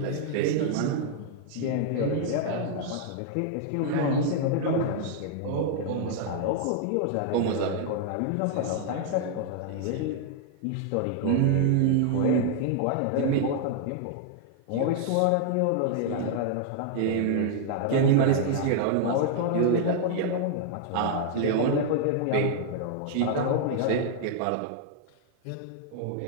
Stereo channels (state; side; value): different; both; correlation -0.01